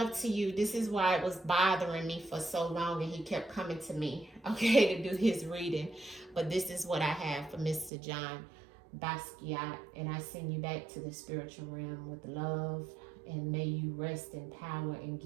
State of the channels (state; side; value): drops out; left; at 7.9 s